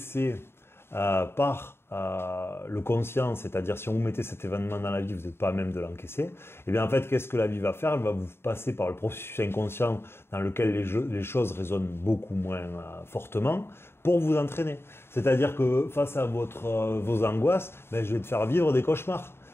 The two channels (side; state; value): right; late; 0.12 ms